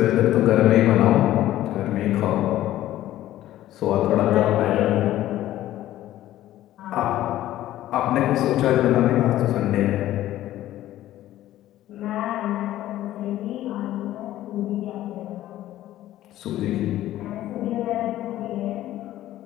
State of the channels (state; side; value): quieter; right; 14.0 dB